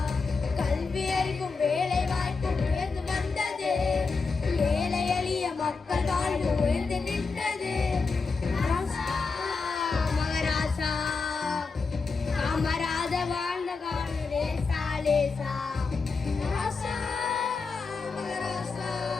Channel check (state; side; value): quieter; right; 4.5 dB